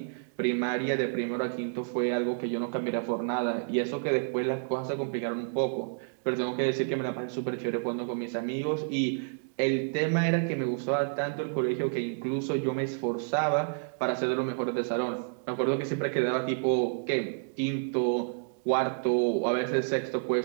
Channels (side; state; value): left; silent; digital silence